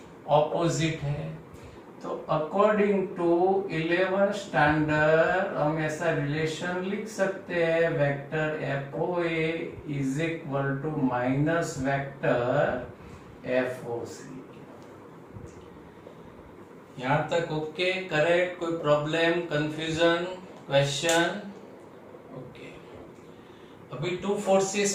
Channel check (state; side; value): identical; both; correlation 1.00